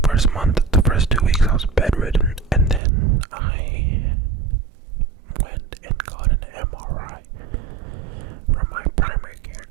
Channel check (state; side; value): drops out; left; at 2.8 s